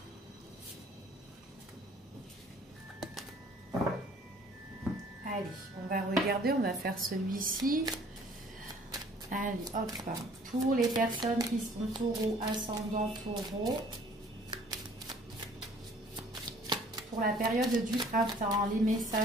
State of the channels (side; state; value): both; normal; correlation 0.55